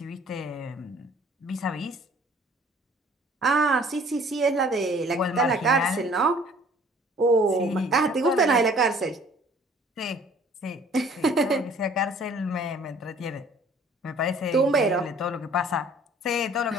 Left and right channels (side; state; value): both; normal; correlation 0.54